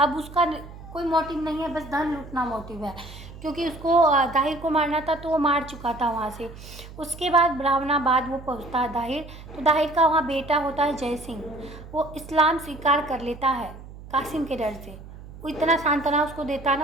उसका कोई मोटिव नहीं है, बस धन लूटना मोटिव है, क्योंकि उसको दाहिर को मारना था तो वो मार चुका था वहाँ से। उसके बाद ब्राह्मणाबाद वो पहुँचता है दाहिर। तो दाहिर का वहाँ बेटा होता है जय सिंह, वो इस्लाम स्वीकार कर लेता है कासिम के डर से। वो इतना सांत्वना उसको देता है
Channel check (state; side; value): noise; right; hum, 16 dB below the sound